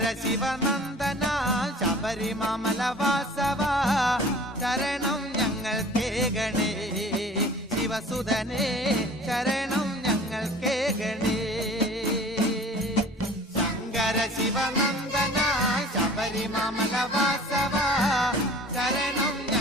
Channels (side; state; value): both; normal; correlation 0.45